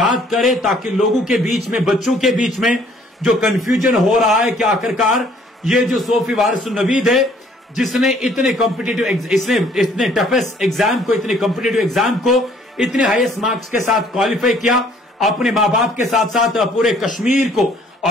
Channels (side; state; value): both; normal; correlation 0.59